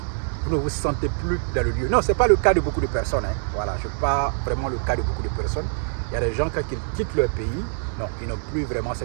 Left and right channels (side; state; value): left; silent; digital silence